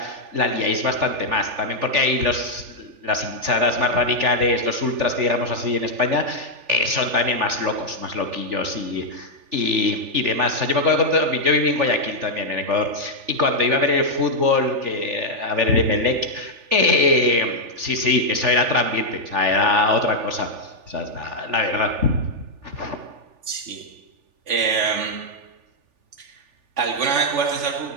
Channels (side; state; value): left; late; 3.4 ms